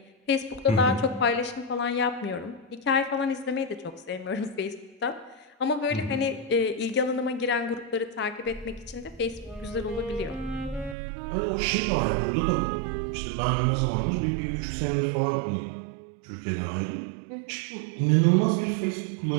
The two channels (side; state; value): left; drops out; at 11.0 s